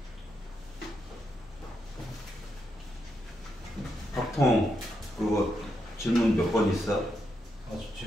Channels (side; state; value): both; normal; correlation 0.82